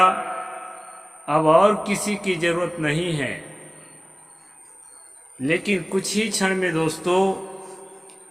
अब और किसी की जरूरत नहीं है। लेकिन कुछ ही क्षण में दोस्तों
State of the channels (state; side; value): identical; both; correlation 1.00